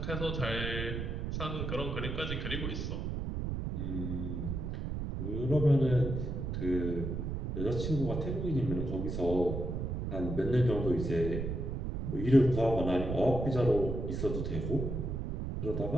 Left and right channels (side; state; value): right; noise; rumble, 3 dB below the sound